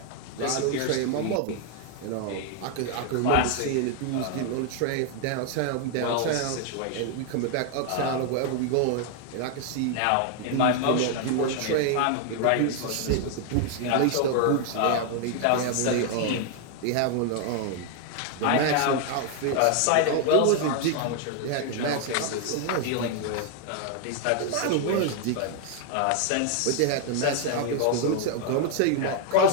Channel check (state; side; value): different; both; correlation 0.00